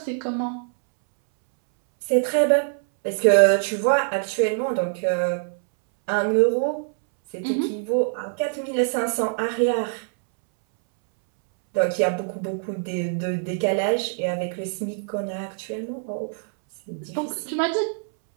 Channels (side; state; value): left; silent; 63 dB below the other